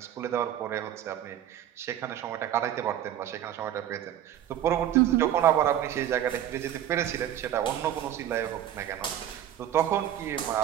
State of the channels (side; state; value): left; quieter; 11.2 dB